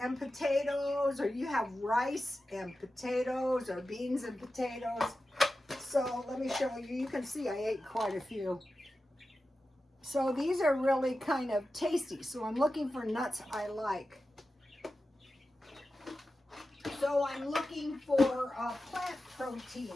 potatoes, or you have rice and potatoes, or beans and potatoes. So let me show you. You can see I ate quite a few. So these are really kind of tasty. So I'm looking for nuts I like. So I'm looking for plant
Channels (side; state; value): both; normal; correlation 0.93